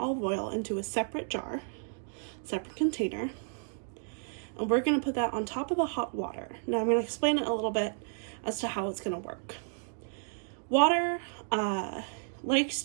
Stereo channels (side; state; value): left; silent; digital silence